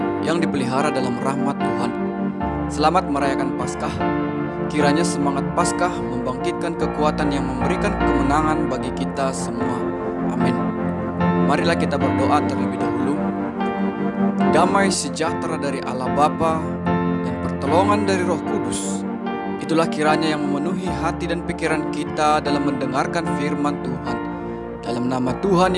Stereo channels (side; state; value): both; identical; correlation 1.00